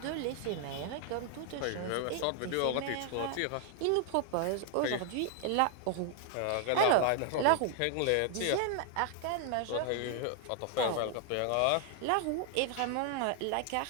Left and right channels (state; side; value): different; both; correlation 0.00